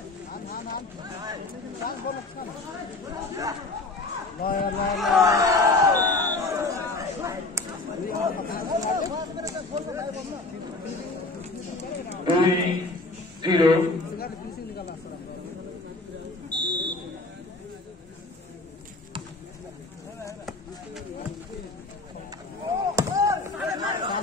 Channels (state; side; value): quieter; right; 3.2 dB